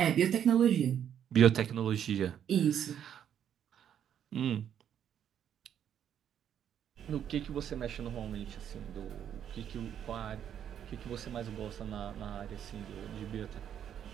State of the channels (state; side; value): quieter; left; 9.3 dB